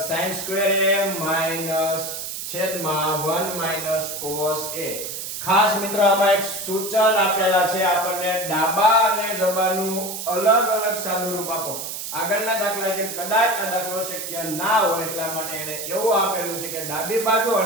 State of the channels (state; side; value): noise; right; hiss, 6 dB below the sound